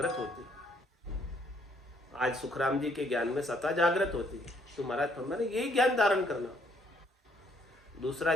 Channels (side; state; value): both; normal; correlation 0.67